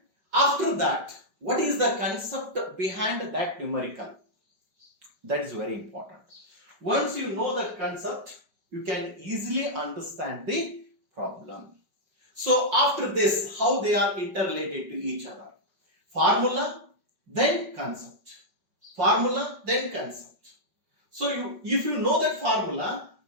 After that, what is the concept behind that numerical? That is very important. Once you know that concept, you can easily understand the problem. So after this, how they are interrelated to each other? Formula, then concept. Formula, then concept. So if you know that formula,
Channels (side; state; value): left; late; 5.2 ms